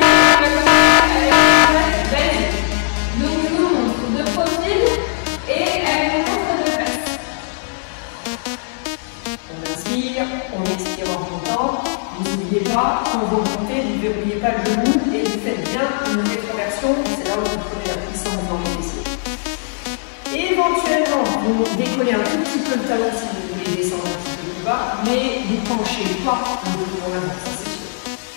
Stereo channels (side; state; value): right; silent; digital silence